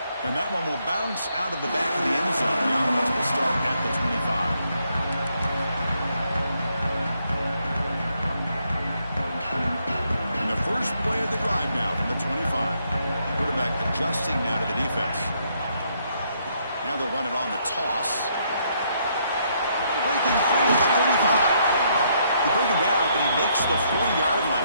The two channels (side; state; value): both; inverted; correlation -0.73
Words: And that one will bounce out of the back of the end zone. The offense will start at the 25. First play of the drive now from the 25. Quarterback adjusting now to the defense. Now they'll run it on the toss. Breaking free at the 35. They bring him down, but he makes the 40-yard